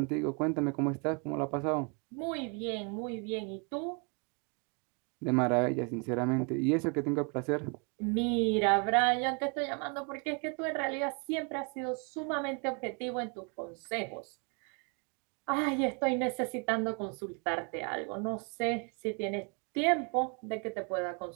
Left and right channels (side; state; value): left; quieter; 35.5 dB